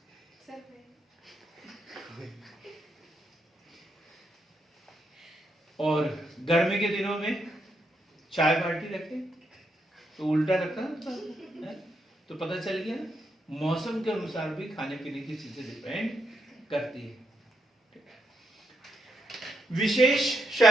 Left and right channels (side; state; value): both; normal; correlation 0.81